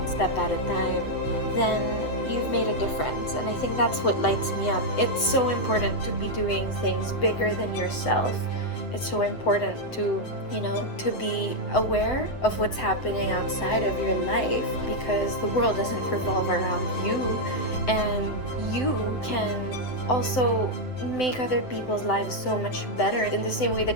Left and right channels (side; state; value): right; late; 7.9 ms